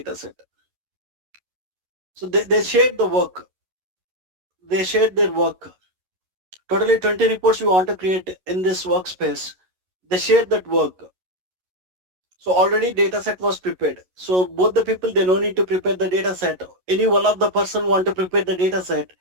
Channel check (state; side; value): late; left; 11 ms